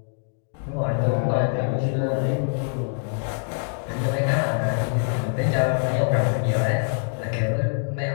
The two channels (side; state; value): right; silent; digital silence